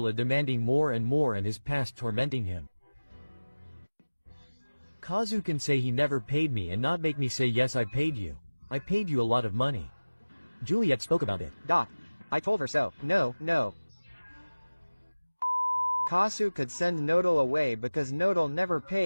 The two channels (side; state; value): both; inverted; correlation -1.00